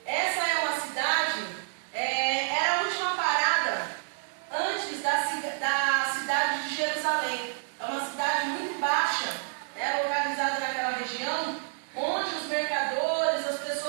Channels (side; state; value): left; silent; digital silence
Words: Essa é uma cidade, era a última parada antes da cidade de Jerusalém. É uma cidade muito baixa, localizada naquela região, onde os mercadores, as